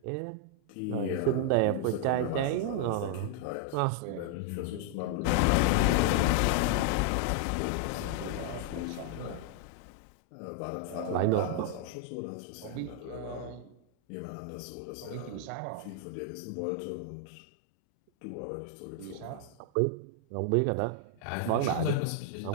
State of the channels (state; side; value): different; both; correlation 0.00